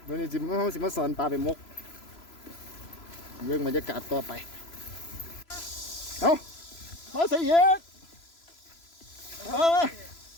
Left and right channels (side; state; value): right; late; 3.0 ms